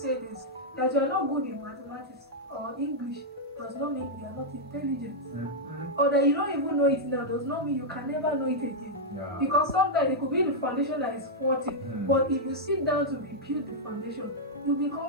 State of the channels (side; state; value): both; normal; correlation -0.05